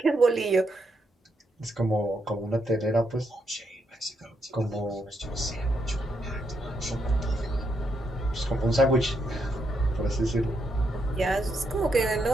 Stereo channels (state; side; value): normal; both; correlation 0.79